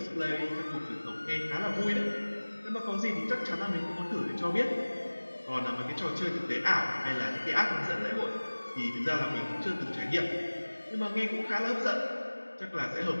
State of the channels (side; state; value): both; inverted; correlation -1.00